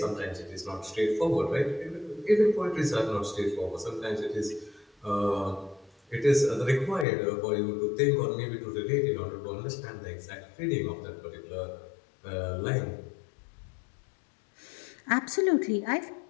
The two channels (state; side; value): drops out; right; at 7.1 s